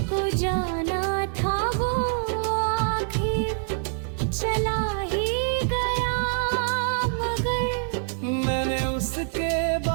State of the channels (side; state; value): left; silent; digital silence